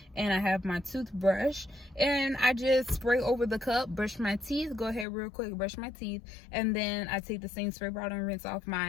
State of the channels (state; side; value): drops out; right; at 5.1 s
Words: and I have my toothbrush, and I just spray over the cup, brush my teeth, go ahead real quick, brush my teeth, and then I take the same spray bottle and rinse off